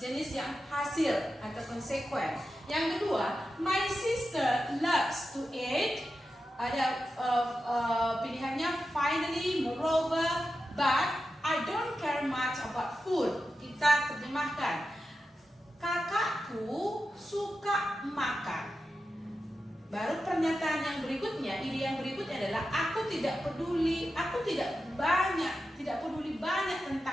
jenis yang hasil atau konsekuen. Yang kedua, my sister loves to eat. Ada pilihannya finally, moreover, but I don't care much about food. Kita terjemahkan, kakakku suka makan. Baru pernyataan yang berikutnya, ide yang berikutnya adalah aku tidak peduli banyak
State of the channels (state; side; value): normal; both; correlation 0.91